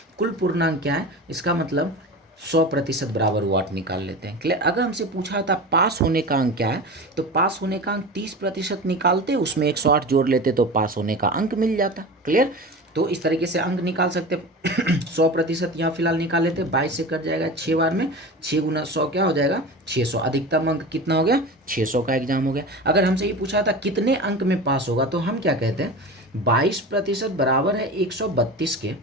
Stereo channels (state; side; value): normal; both; correlation 0.31